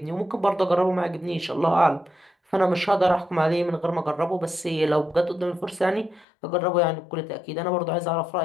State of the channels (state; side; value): drops out; right; at 6.2 s